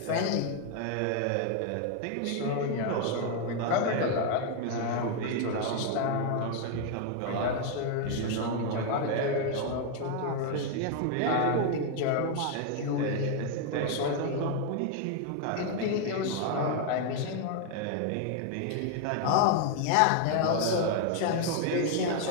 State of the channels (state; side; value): different; both; correlation 0.01